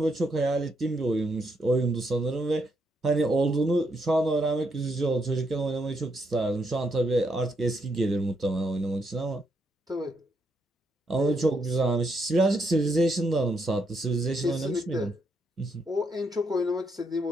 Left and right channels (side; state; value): both; normal; correlation 0.77